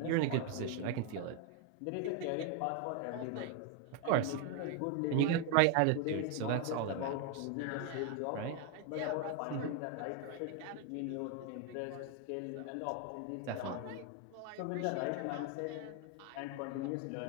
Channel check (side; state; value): both; different; correlation 0.01